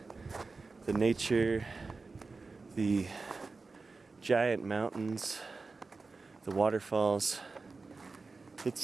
the nature, the giant mountains, the waterfalls,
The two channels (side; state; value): left; quieter; 4.0 dB